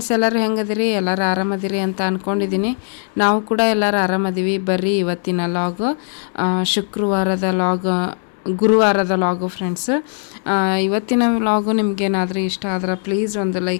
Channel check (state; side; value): silent; right; 61 dB below the other